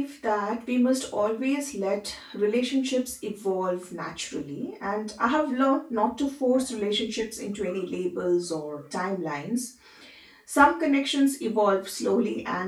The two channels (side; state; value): both; identical; correlation 1.00